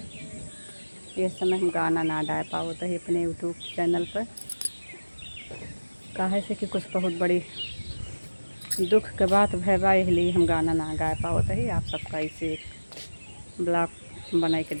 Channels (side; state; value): both; inverted; correlation -1.00